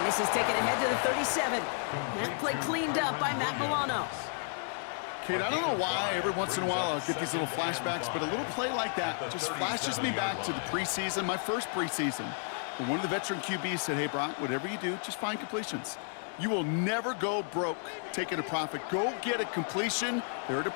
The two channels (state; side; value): silent; right; 56 dB below the other